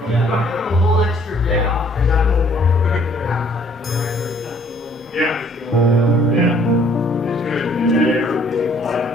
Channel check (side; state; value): both; normal; correlation 0.60